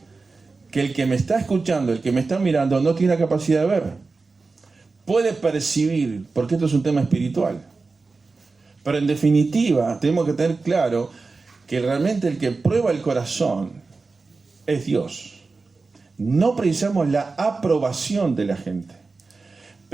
que el que me está escuchando, el que me está mirando, no tiene la capacidad de ver. Puede percibir, porque esto es un tema espiritual. Pero en definitiva, tenemos que tener claro que realmente el que prueba el corazón es Dios. No precisamos la aprobación de la gente.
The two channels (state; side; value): quieter; left; 4.0 dB